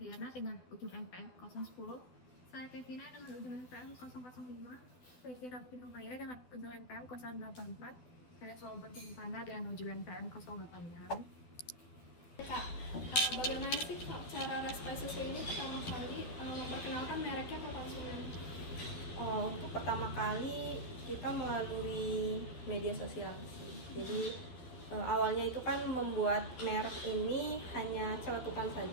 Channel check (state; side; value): late; right; 12 ms